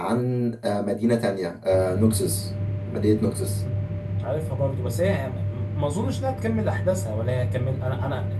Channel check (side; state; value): both; identical; correlation 1.00